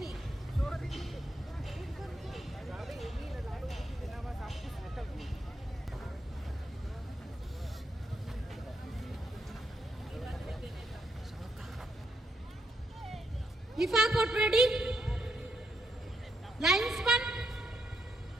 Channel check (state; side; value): normal; both; correlation 0.78